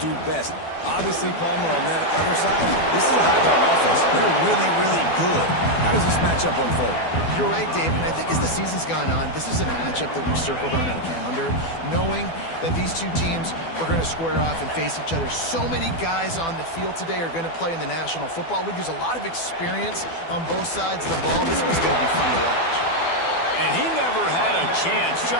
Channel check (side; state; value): right; late; 12 ms